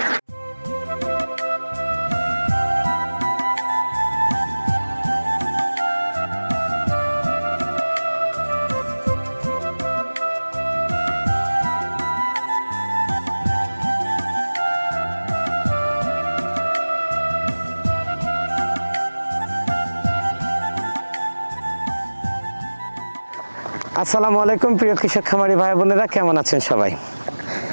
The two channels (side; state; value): both; inverted; correlation -1.00